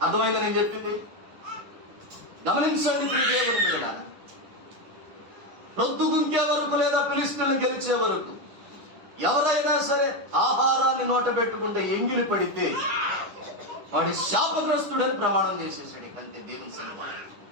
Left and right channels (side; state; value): left; late; 10 ms